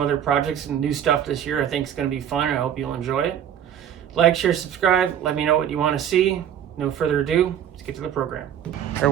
projects and new stuff this year. I think it's going to be fun. I hope you'll enjoy it. Like, share, subscribe. Let me know what you want to see. No further ado, let's get to the program. Our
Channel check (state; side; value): quieter; left; 9.6 dB